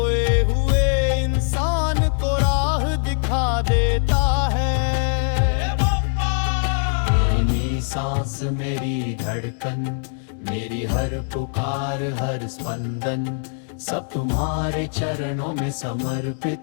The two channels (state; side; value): silent; right; 64 dB below the other